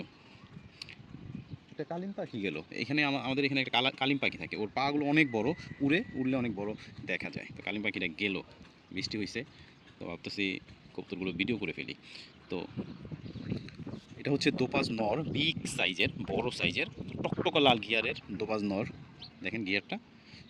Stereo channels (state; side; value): identical; both; correlation 1.00